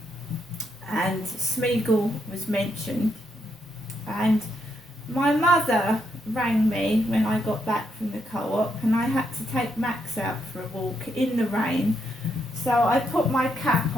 and Smeagol was mentioned, and my mother rang me when I got back from the co-op and I had to take Max out for a walk in the rain, so I put my cap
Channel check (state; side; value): normal; both; correlation 0.79